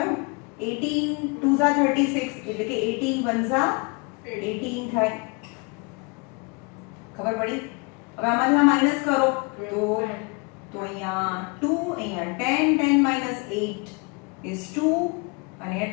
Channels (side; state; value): right; quieter; 31.2 dB